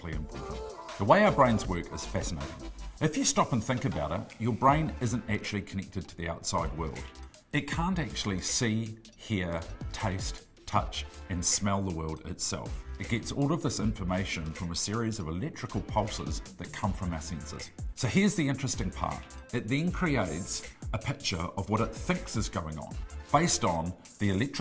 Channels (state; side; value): identical; both; correlation 1.00